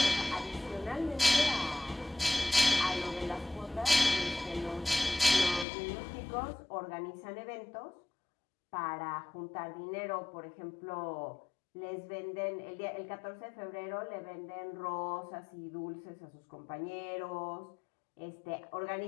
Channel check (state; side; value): drops out; right; at 5.7 s